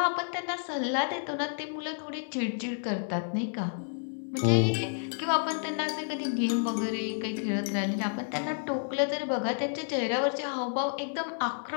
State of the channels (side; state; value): right; silent; digital silence